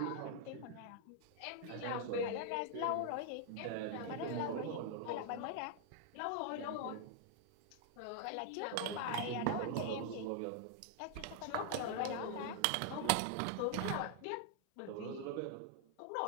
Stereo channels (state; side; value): different; both; correlation 0.00